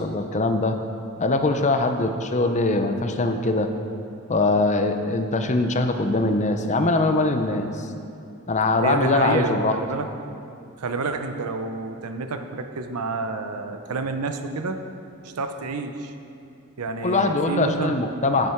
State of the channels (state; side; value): normal; both; correlation 0.18